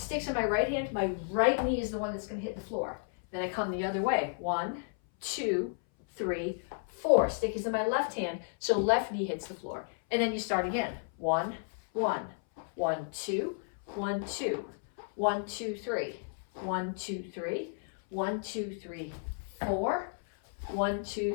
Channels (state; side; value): silent; right; 56 dB below the other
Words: in my right hand. My right knee is the one that's going to hit the floor. Then I come the other way. 1, 2, 3, 4. Stick is in my left hand, so left knee hits the floor. And then you start again. 1, 1, 1, 2, 1, 2, 1, 2, 3, 1, 2, 3, 1, 2, 3, 4, 1,